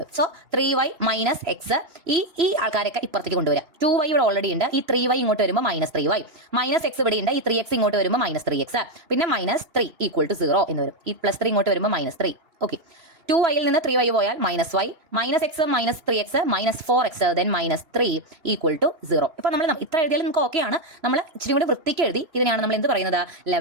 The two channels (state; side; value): late; left; 3.0 ms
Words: So 3y minus X. ഈ ആൾക്കാരൊക്കെ ഇപ്പുറത്തേക്ക് കൊണ്ടുവരാം. 2y ഇവിടെ ഓൾറെഡി ഉണ്ട്. ഈ 3y ഇങ്ങോട്ട് വരുമ്പോൾ -3y. മൈനസ് എക്സ് ഇവിടെ ഉണ്ട്. ഈ 3x ഇങ്ങോട്ട് വരുമ്പോൾ -3x. പിന്നെ -3 ഈക്വൽ ടു 0 എന്ന് വരും. ഈ +3 ഇങ്ങോട്ട് വരുമ്പോൾ -3. ഓക്കെ, 2y ൽ നിന്ന് 3y പോയാൽ -y, -x -3x -4x then -3 equal to 0. ഇപ്പോൾ നമ്മൾ ഇത്ര എഴുതിയാലും നമുക്ക് ഓക്കെയാണ്. നമ്മൾ ഇച്ചിരി കൂടി വൃത്തിക്ക് എഴുതി. ഇതിനെയാണ് നമ്മൾ എന്ത് പറയുന്നത്?